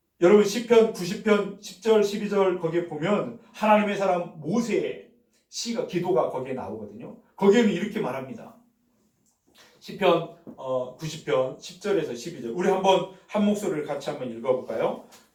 여러분 시편 90편 10절 12절 거기에 보면 하나님의 사람 모세의 시가 기도가 거기에 나오거든요. 거기에는 이렇게 말합니다. 시편 90편 10절에서 12절 우리 한번 한 목소리를 같이 한번 읽어볼까요?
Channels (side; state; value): both; identical; correlation 1.00